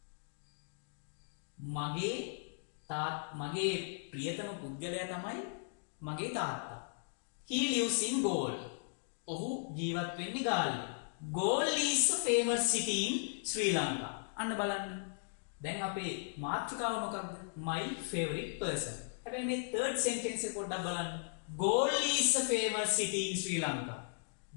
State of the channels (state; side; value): silent; right; digital silence